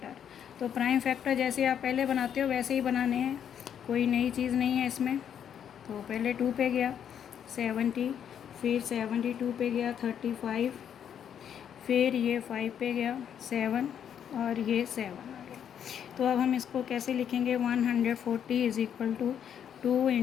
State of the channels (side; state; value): right; quieter; 8.8 dB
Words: तो प्राइम फैक्टर जैसे आप पहले बनाते हो वैसे ही बनाने हैं, कोई नई चीज़ नहीं है इसमें। तो पहले 2 पे गया 70, फिर 72 पे गया 35, फिर ये 5 पे गया 7 और ये 7 आ गया। तो अब हम इसको कैसे लिखेंगे, 140 is equal to 2